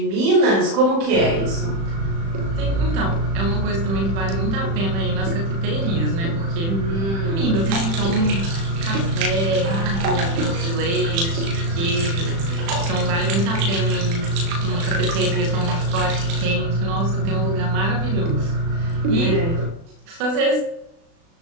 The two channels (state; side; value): late; left; 36 ms